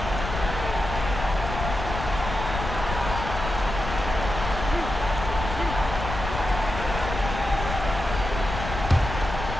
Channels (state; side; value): noise; left; rumble, 6 dB below the sound